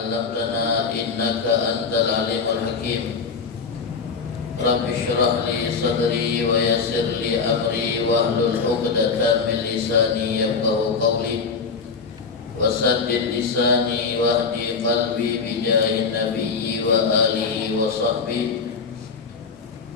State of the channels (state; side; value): quieter; right; 5.1 dB